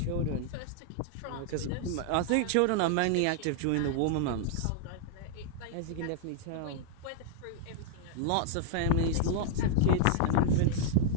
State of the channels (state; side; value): different; both; correlation -0.01